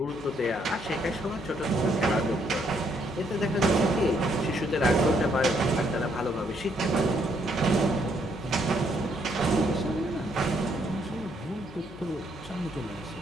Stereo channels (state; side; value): noise; left; hum, 22 dB below the sound